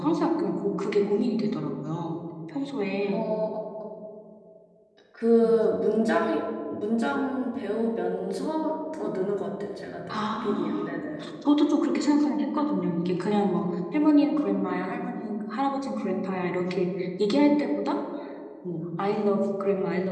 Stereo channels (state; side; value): identical; both; correlation 1.00